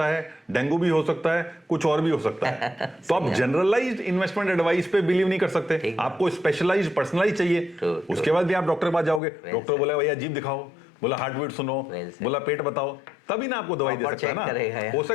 है, डेंगू भी हो सकता है, कुछ और भी हो सकता है। तो आप जनरलाइज्ड इन्वेस्टमेंट एडवाइस पे बिलीव नहीं कर सकते, आपको स्पेशलाइज्ड, पर्सनलाइज्ड चाहिए। उसके बाद भी आप डॉक्टर के पास जाओगे, डॉक्टर बोला भैया जीभ दिखाओ, बोला हार्ट बीट सुनो, बोला पेट बताओ, तभी ना आपको दवाई दे सकता है ना। हो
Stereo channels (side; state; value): right; drops out; at 9.2 s